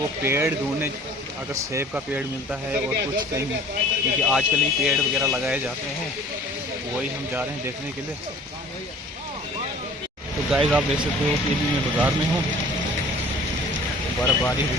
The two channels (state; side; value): normal; both; correlation 0.49